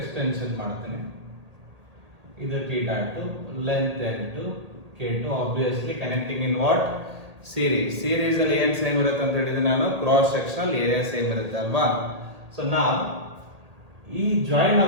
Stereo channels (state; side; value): late; left; 1.8 ms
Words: ಮಾಡ್ತೀನಿ, ಇದು θ2, length L2, K2. Obviously connecting in what series ಅಲ್ಲಿ ಏನ್ ಸೇಮ್ ಇರುತ್ತೆ ಅಂತ ಹೇಳಿದ್ರೆ ನಾನು ಕ್ರಾಸ್ ಸೆಕ್ಷನಲ್ ಏರಿಯಾ ಸೇಮ್ ಇರುತ್ತೆ ಅಲ್ವಾ. ಸೊ ನಾವು ಈ ಜಾಯಿನ್